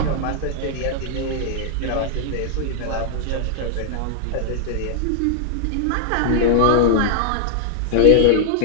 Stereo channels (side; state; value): both; different; correlation -0.01